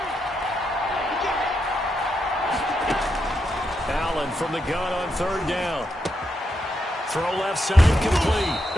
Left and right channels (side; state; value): both; normal; correlation 0.82